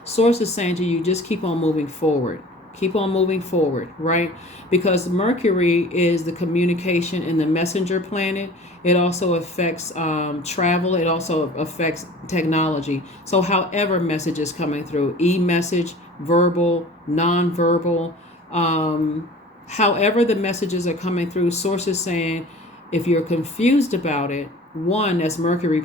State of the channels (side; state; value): both; normal; correlation 0.43